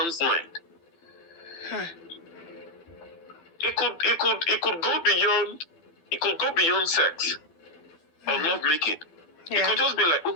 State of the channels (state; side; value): late; right; 12 ms